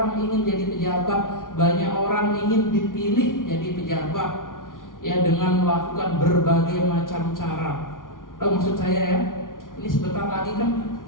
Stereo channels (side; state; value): right; late; 0.89 ms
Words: ingin jadi pejabat, banyak orang ingin dipilih jadi pejabat ya, dengan melakukan berbagai macam cara. Tahu maksud saya ya? Ini sebentar lagi kan